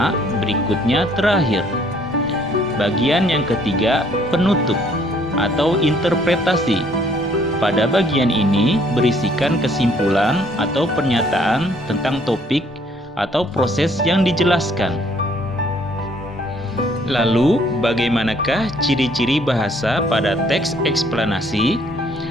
berikutnya terakhir. Bagian yang ketiga, penutup atau interpretasi. Pada bagian ini berisikan kesimpulan atau pernyataan tentang topik atau proses yang dijelaskan. Lalu, bagaimanakah ciri-ciri bahasa pada teks eksplanasi?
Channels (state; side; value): normal; both; correlation 0.63